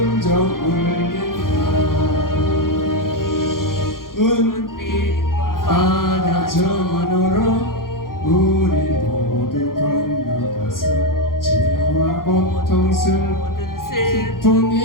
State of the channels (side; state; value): right; late; 0.91 ms